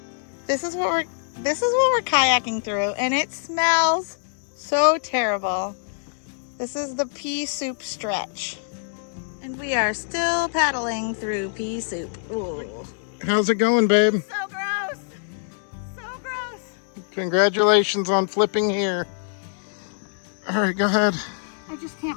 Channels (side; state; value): right; silent; digital silence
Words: This is what we're kayaking through, and it smells so terrible. This is the pea soup stretch. And we are still paddling through pea soup. Ooh. How's it going, babe? So gross. So gross. Congratulations on flipping here. All right, go ahead. I just